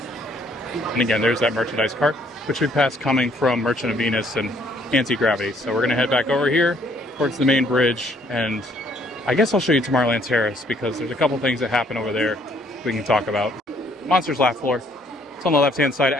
And again, there's that merchandise cart, which we passed coming from Merchant of Venus and Anti-Gravity. So we're going to head back over here towards the main bridge, and I guess I'll show you Tomorrowland Terrace because there's a couple things that happen over there we can talk about. Monsters Laugh Floor. It's on the left-hand side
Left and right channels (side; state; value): both; normal; correlation 0.65